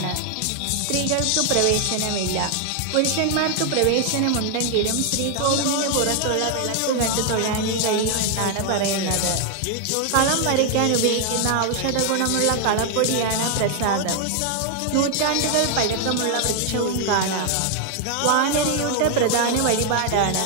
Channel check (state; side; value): different; both; correlation 0.00